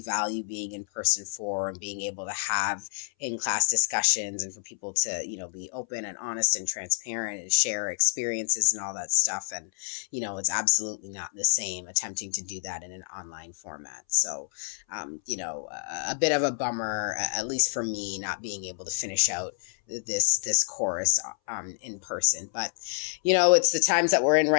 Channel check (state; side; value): silent; right; 59 dB below the other